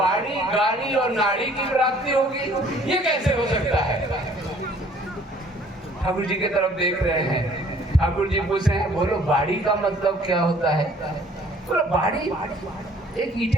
गाड़ी और नाड़ी की प्राप्ति होगी, ये कैसे हो सकता है? ठाकुर जी की तरफ देख रहे हैं। ठाकुर जी पूछ रहे हैं, बोलो बाड़ी का मतलब क्या होता है? बोलो बाड़ी एक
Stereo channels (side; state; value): both; normal; correlation 0.57